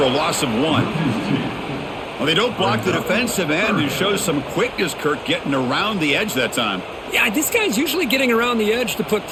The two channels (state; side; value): identical; both; correlation 1.00